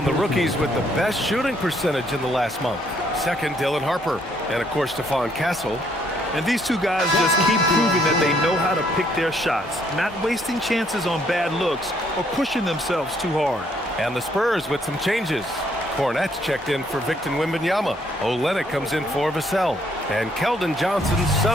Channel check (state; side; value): normal; both; correlation 0.68